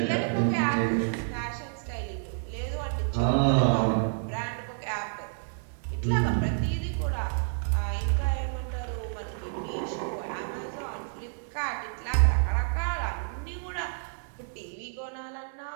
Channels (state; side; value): silent; left; digital silence